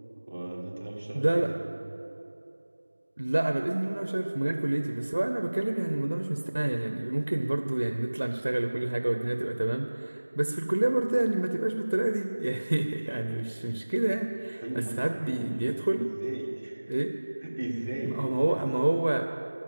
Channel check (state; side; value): inverted; both; correlation -1.00